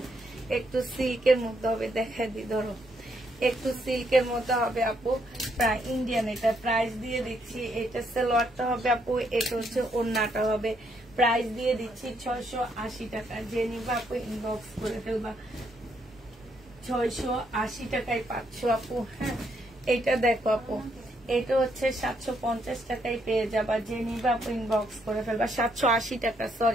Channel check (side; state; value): both; normal; correlation 0.74